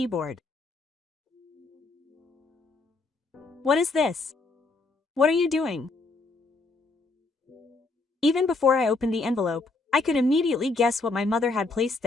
"What is this? What are you doing?" Even before I opened the envelope, I could immediately guess what my mother had placed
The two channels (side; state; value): right; quieter; 3.6 dB